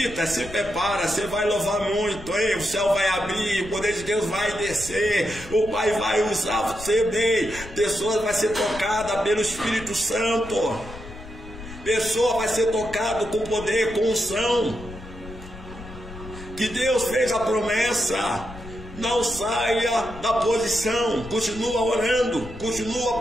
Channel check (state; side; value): noise; left; rumble, 14 dB below the sound